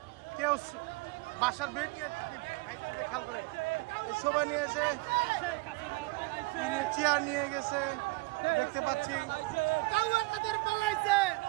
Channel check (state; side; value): quieter; left; 25.0 dB